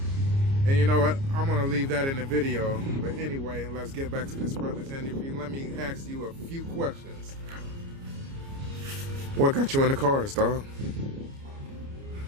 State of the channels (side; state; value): left; late; 29 ms